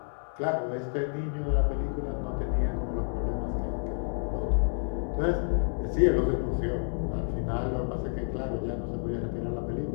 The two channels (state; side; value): silent; right; 58 dB below the other